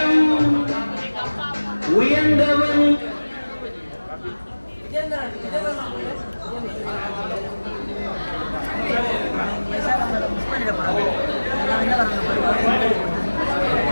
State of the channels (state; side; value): inverted; both; correlation -1.00